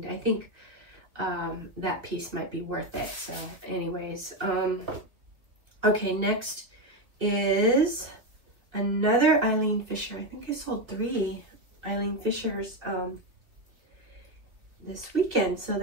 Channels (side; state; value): left; late; 2.4 ms